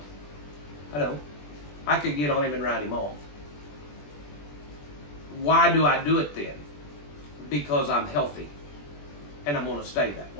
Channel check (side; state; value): right; late; 21 ms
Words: I don't. I could get on him and ride him off. Why do I do it then? Because I'm healthy and I'm going to stay that